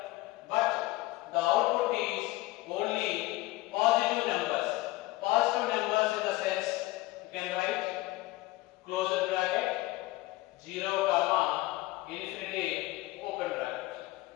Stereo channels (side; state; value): right; quieter; 19.3 dB